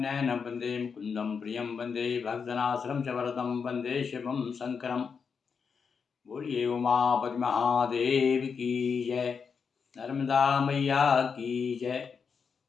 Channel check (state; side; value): quieter; right; 5.9 dB